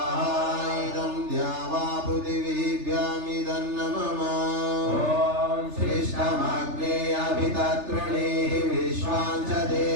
इदं द्यावा पृथिवीभ्यामिदन्न मम श्रेष्ठमग्ने अभिततृणीः विश्वां च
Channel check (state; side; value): late; left; 3.4 ms